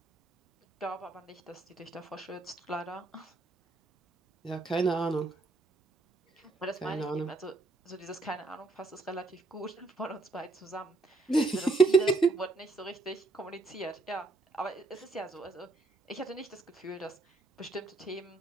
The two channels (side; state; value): left; quieter; 3.2 dB